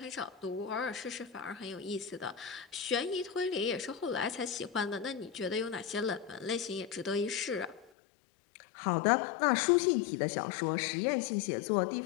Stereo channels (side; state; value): right; drops out; at 7.9 s